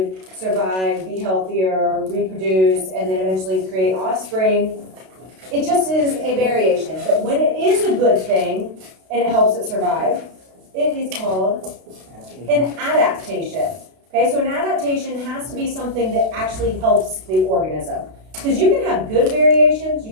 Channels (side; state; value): left; late; 32 ms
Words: survive, be healthier, reproduce, and then eventually create offspring, it just is a variation. But when it is a good thing and it helps it survive, it is called an adaptation. Okay, so an adaptation has to be something that actually helps the organism. Because you can have good variations, you